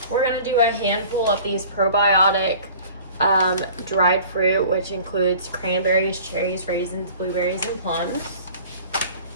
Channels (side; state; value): both; inverted; correlation -0.46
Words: gonna do a handful of these probiotic dried fruit, which includes cranberries, cherries, raisins, blueberries, and plums.